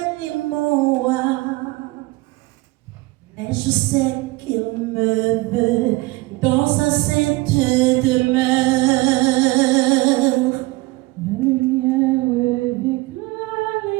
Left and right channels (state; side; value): quieter; left; 22.0 dB